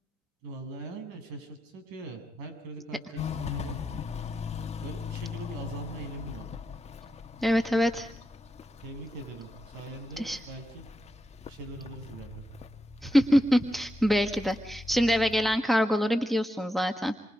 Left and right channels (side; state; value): both; normal; correlation 0.87